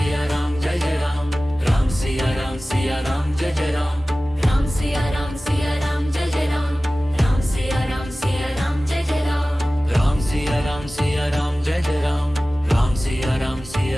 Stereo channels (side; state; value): both; normal; correlation 0.97